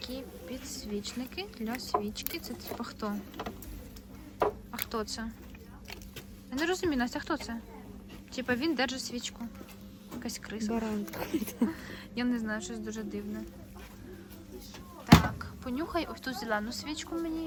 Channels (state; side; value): identical; both; correlation 1.00